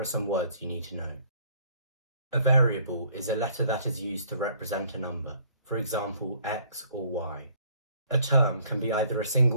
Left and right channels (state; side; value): inverted; both; correlation -0.60